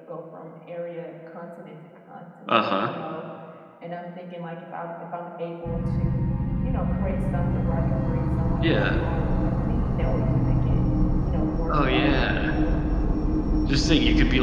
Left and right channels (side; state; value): both; identical; correlation 1.00